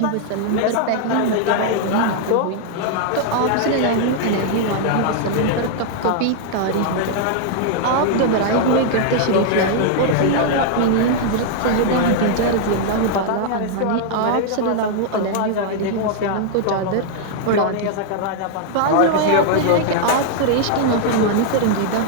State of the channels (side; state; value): both; different; correlation 0.00